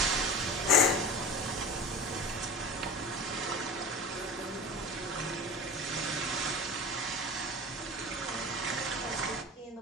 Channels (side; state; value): both; normal; correlation 0.34